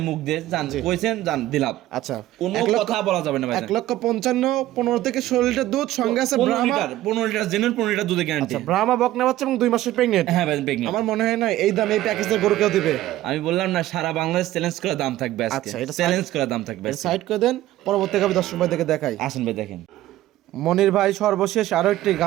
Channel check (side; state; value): left; quieter; 14.9 dB